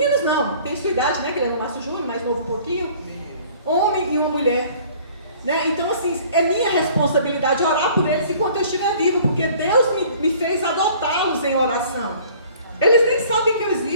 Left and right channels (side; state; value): both; inverted; correlation -0.52